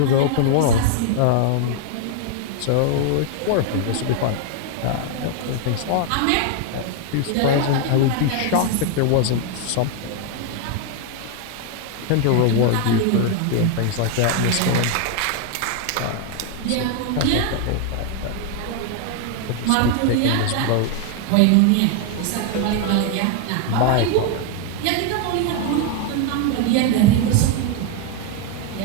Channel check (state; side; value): different; both; correlation 0.00